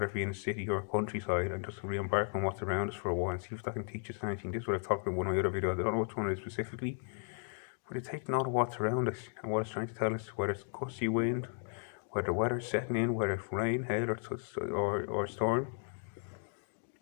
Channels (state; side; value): silent; right; 54 dB below the other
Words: it be in a city or a countryside, and just re-embark on what's around us for a while and see if that can teach us anything. This is what I've talked about in one of my other videos. I don't know which one it is specifically, but it's taking note of what's around us and what it's trying to tell us, whether it's gusty wind, whether the weather's setting in, whether it's rain, hail or storm.